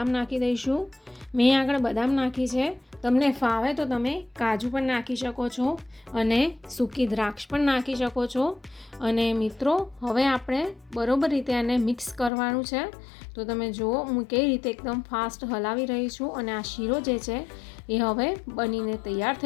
નાખી દઈશું। મેં આગળ બદામ નાખી છે, તમને ફાવે તો તમે કાજુ પણ નાખી શકો છો અને સૂકી દ્રાક્ષ પણ નાખી શકો છો। અને મિત્રો હવે આપણે બરોબર રીતે એને મિક્સ કરવાનું છે। તો તમે જુઓ હું કઈ રીતે એકદમ ફાસ્ટ હલાવી રહી છું અને આ શીરો જે છે એ હવે બનીને તૈયાર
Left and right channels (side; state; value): right; drops out; at 12.3 s